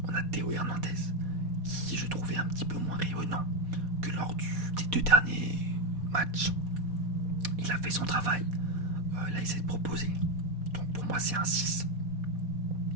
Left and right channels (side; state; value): left; late; 4.2 ms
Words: on a Théo Hernandez, qui je trouvais un petit peu moins rayonnant que lors des 2 derniers matchs. Il a fait son travail, il a essayé de proposer, donc pour moi c'est un 6.